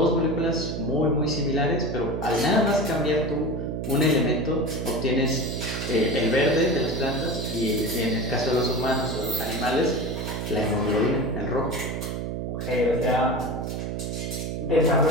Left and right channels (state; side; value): noise; right; hum, 4 dB below the sound